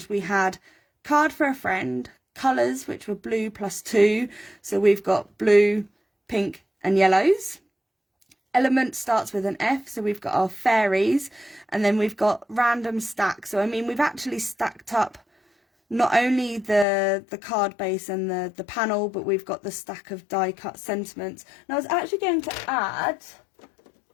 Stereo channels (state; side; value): drops out; right; at 16.9 s